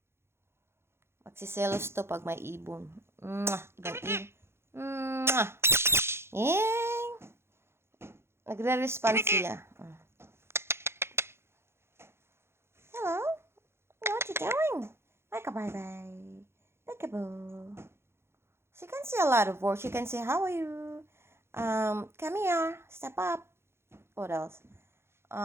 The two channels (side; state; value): left; late; 0.12 ms